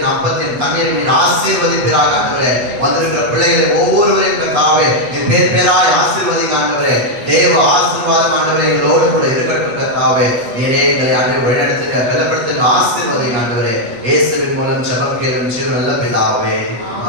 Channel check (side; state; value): left; late; 8.1 ms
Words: அப்பத்தின் தண்ணீரை நீர் ஆசீர்வதிப்பீராக ஆண்டவரே. வந்திருக்கிற பிள்ளைகளை ஒவ்வொருவரையும் கர்த்தாவே நீர் பேர் பேராய் ஆசீர்வதிங்க ஆண்டவரே. தேவ ஆசீர்வாதம் ஆண்டவரே எங்களோடு கூட இருக்கட்டும் கர்த்தாவே. நீரே எங்களை ஆண்டவரே வழிநடத்துங்க, பலப்படுத்துங்க, ஆசீர்வதிங்க ஆண்டவரே. இயேசுவின் மூலம் ஜெபம் கேளும் ஜீவன் நல்ல பிதாவே,